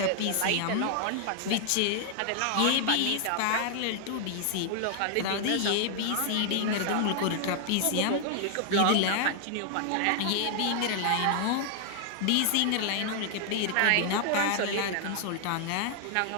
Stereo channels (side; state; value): both; different; correlation 0.00